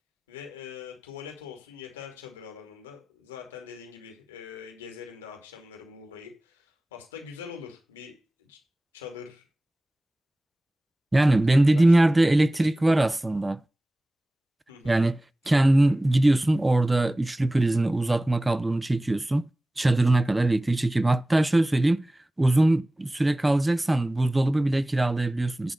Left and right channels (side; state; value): both; normal; correlation 0.98